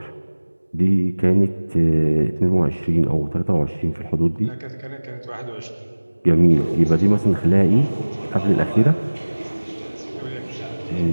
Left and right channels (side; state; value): both; inverted; correlation -1.00